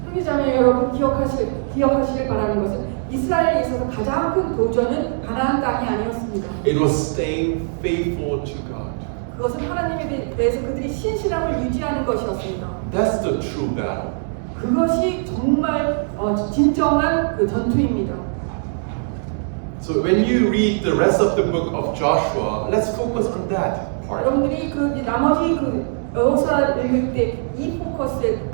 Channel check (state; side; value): silent; left; digital silence